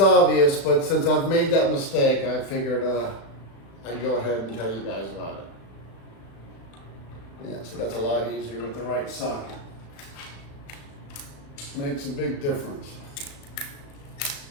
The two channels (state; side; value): late; right; 36 ms